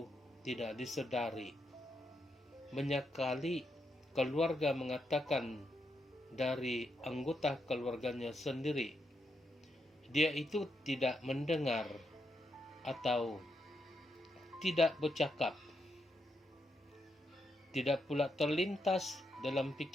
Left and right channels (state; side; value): normal; both; correlation 0.82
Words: tidak disadari. Banyak kali keluarga mengatakan dari anggota keluarganya sendiri, dia itu tidak mendengar atau tidak bercakap. Tidak pula terlintas dalam